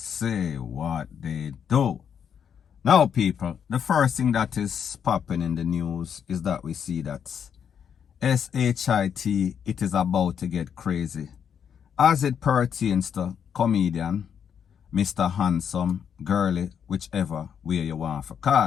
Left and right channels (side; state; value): right; quieter; 7.9 dB